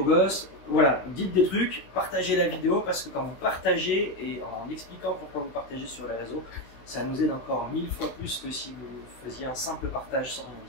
gosse. Voilà, dites des trucs, partagez la vidéo parce que quand vous partagez et en expliquant pourquoi vous partagez sur les réseaux, ça nous aide encore 1000 fois plus que si vous faisiez un simple partage sans rien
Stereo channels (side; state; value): right; late; 16 ms